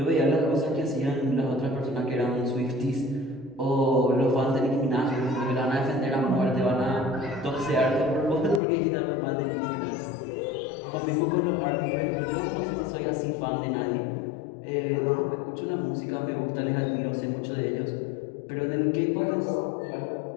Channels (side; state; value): right; drops out; at 8.6 s